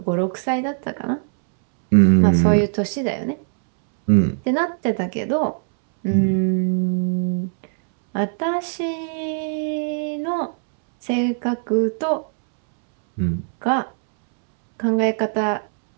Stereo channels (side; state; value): left; silent; 65 dB below the other